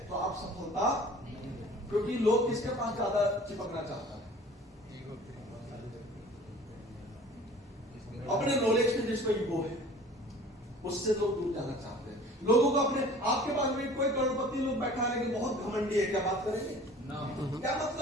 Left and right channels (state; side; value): normal; both; correlation 0.46